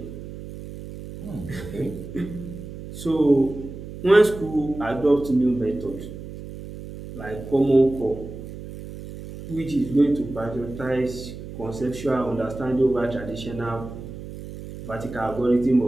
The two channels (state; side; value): noise; right; hum, 12 dB below the sound